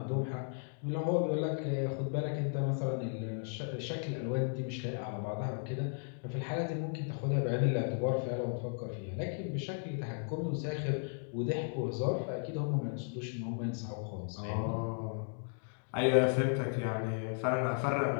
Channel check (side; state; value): right; silent; 54 dB below the other